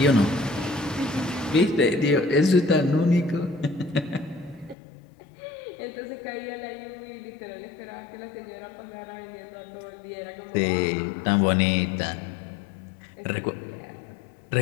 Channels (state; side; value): drops out; right; at 4.8 s